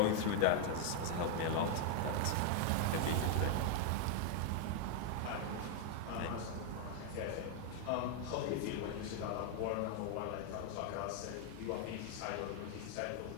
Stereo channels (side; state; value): both; different; correlation 0.00